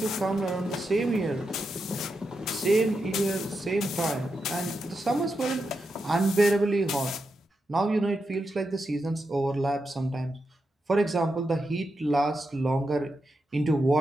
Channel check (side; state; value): both; normal; correlation 0.86